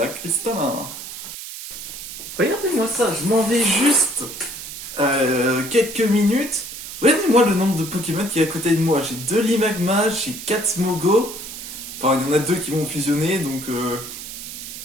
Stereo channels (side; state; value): right; noise; hiss, 10 dB below the sound